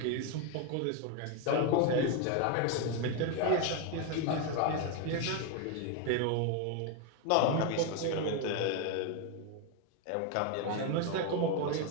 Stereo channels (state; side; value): different; both; correlation 0.02